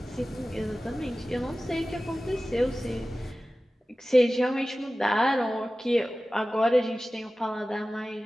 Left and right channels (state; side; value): normal; both; correlation 0.96